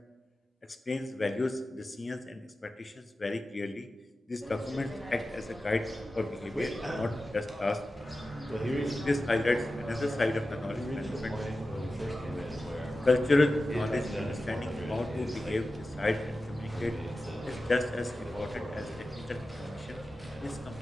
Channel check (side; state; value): both; normal; correlation 0.94